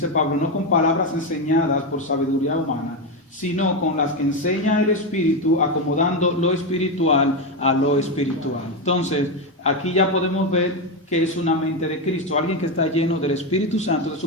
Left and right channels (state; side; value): normal; both; correlation 0.10